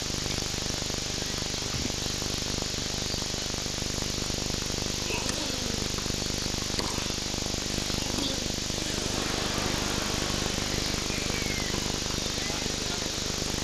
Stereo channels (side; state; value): both; identical; correlation 1.00